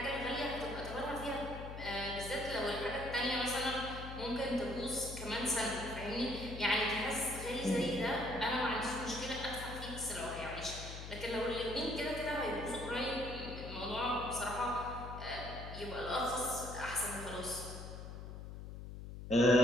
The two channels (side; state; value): left; noise; hum, 10 dB below the sound